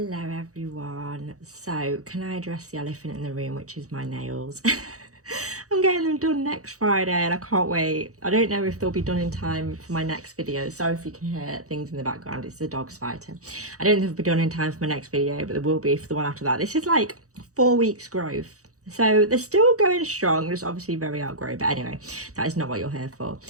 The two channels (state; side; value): late; left; 0.65 ms